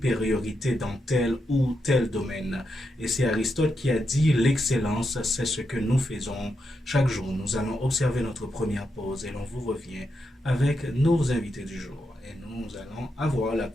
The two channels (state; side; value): normal; both; correlation 0.84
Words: dans tel ou tel domaine. Et c'est Aristote qui a dit l'excellence, c'est ce que nous faisons chaque jour. Nous allons observer notre première pause et l'on vous revient avec nos invités du jour. Et nous allons avoir la